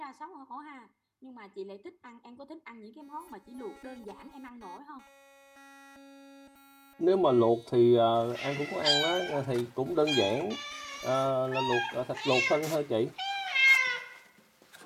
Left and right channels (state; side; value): identical; both; correlation 1.00